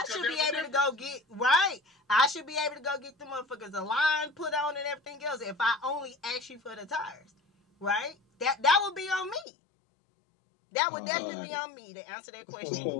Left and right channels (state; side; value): drops out; right; at 9.5 s